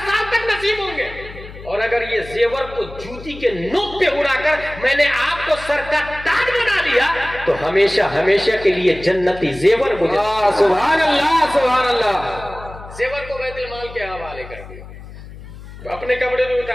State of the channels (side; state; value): left; noise; hum, 15 dB below the sound